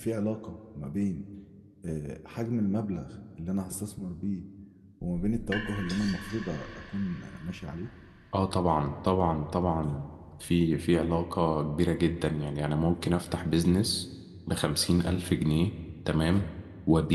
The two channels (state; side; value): identical; both; correlation 1.00